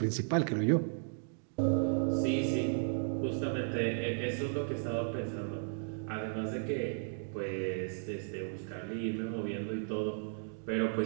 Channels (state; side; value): silent; left; digital silence